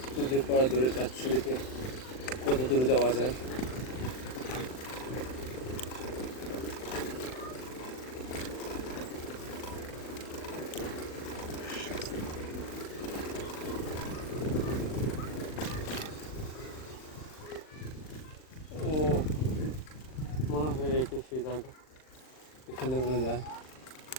নদীর পর দূরে যাচ্ছি, দেখে কত দূরে যাওয়া যায়। ও মনে হয় এটা সেই জায়গা, এখানে মনে যায়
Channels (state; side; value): late; right; 39 ms